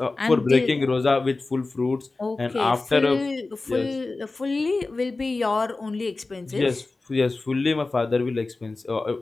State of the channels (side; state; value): right; quieter; 3.4 dB